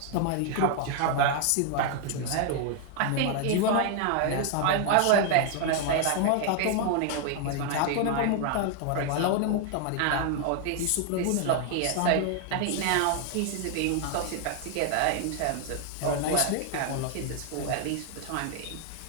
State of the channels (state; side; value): different; both; correlation 0.00